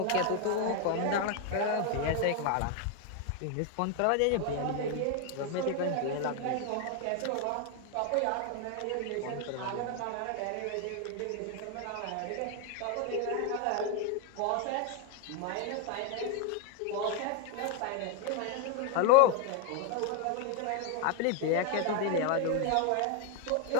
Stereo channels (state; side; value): different; both; correlation 0.01